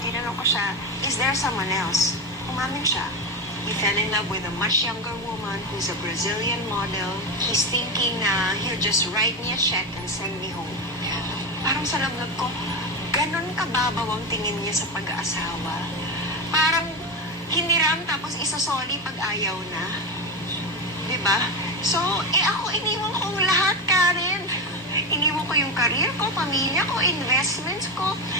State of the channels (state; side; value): normal; both; correlation 0.17